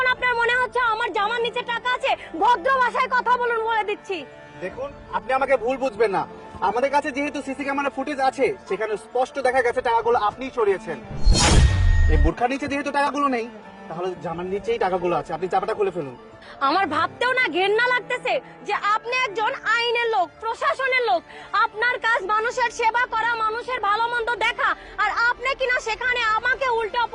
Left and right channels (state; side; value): identical; both; correlation 1.00